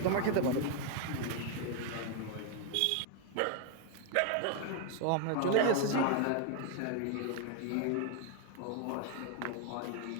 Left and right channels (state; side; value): different; both; correlation 0.01